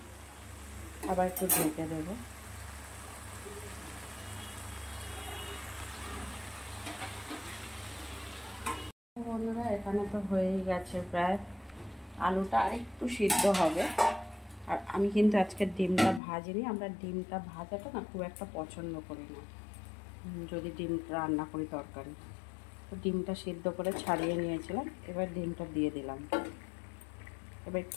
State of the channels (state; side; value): drops out; right; at 16.2 s